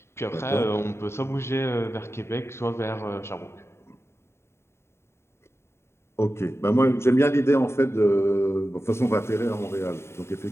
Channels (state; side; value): late; right; 0.13 ms